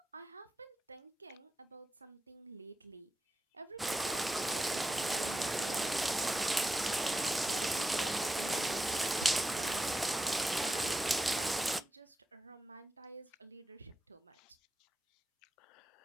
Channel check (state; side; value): normal; both; correlation 0.90